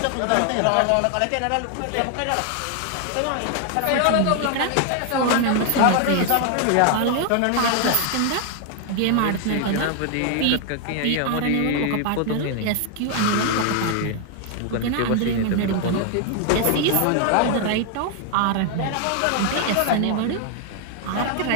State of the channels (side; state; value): both; different; correlation 0.00